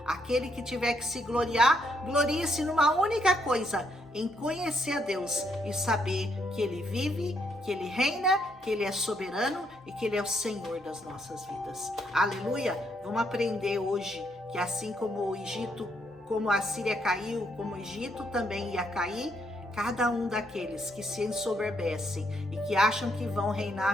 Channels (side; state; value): both; normal; correlation 0.74